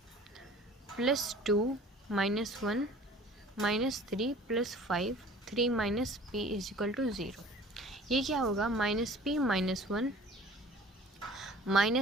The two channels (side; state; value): both; normal; correlation 0.47